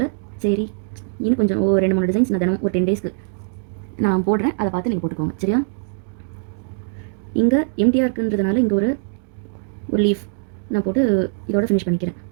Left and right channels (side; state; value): left; silent; digital silence